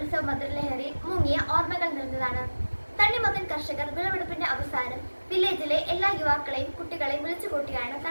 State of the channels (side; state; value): both; inverted; correlation -1.00